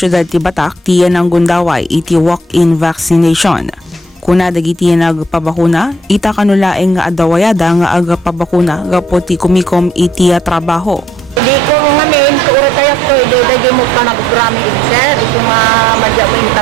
ti Batak tiyan ang gundaway iti walk-in vaccination. Kuna dagiti nagpabakuna, ita kanulaeng nga adawayada nga agpabakuna gapo ti kumikom iti trabaho. Hindi ko ngamin, kaura tayo ko, hindi mo pa nag-grami sir, ito nga madya mo yung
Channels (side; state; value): both; normal; correlation 0.65